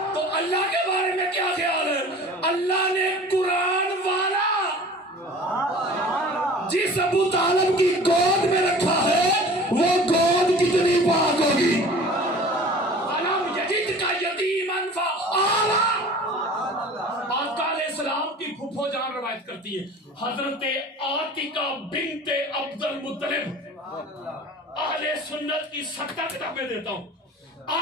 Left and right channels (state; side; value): normal; both; correlation 0.43